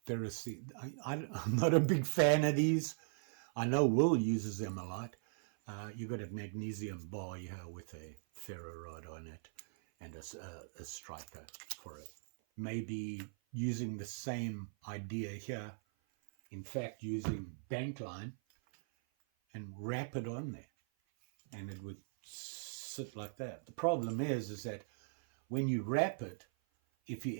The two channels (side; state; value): left; silent; 52 dB below the other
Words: ferrous. I'm not a big fan of these. I know Will uses them a lot. You got a magnesium bar here with a ferro rod on it and a striker for it. Maybe using the same idea here. In fact, using bank line and wrap it on there, and it would sit like that. The problem is that when you wrap it, if you